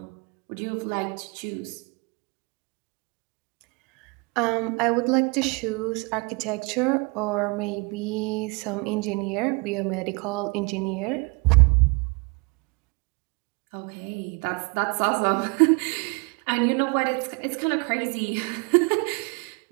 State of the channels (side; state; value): left; quieter; 29.8 dB